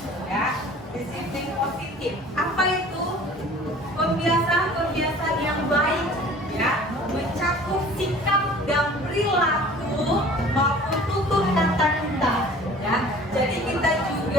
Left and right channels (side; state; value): both; normal; correlation 0.47